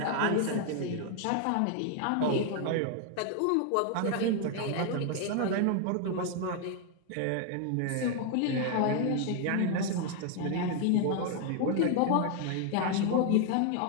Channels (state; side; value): different; both; correlation 0.00